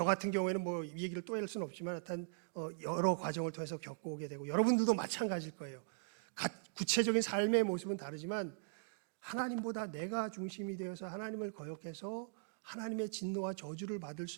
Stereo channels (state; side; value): silent; left; digital silence